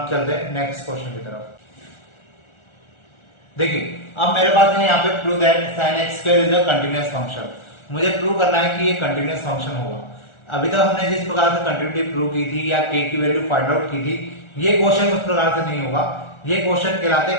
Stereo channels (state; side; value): late; right; 1.4 ms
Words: चलते हैं नेक्स्ट क्वेश्चन की तरफ। देखिए अब मेरे पास है यहाँ पे prove that sin x square is a continuous function. मुझे प्रूव करना है कि ये कंटीन्यूअस फंक्शन होगा। अभी तक हमने जिस प्रकार से कंटिन्यूटी प्रूव की थी या k की वैल्यू फाइंड आउट की थी, ये क्वेश्चन उस प्रकार से नहीं होगा। ये क्वेश्चन कहलाते